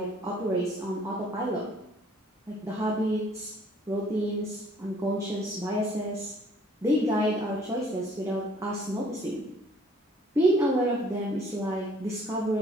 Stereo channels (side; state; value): both; normal; correlation 0.59